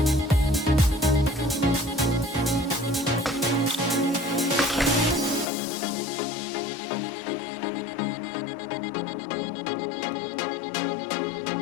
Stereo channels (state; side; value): drops out; right; at 5.5 s